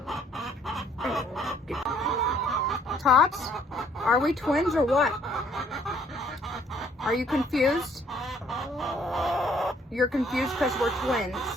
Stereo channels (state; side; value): normal; both; correlation 0.63